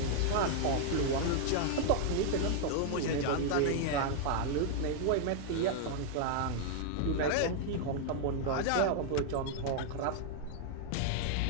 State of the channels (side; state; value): both; different; correlation 0.00